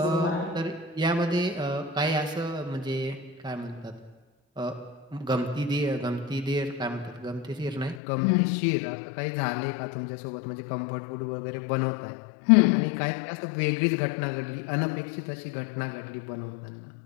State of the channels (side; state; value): right; drops out; at 8.0 s